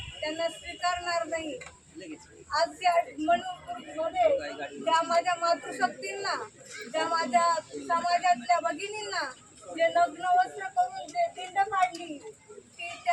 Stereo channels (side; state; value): both; identical; correlation 1.00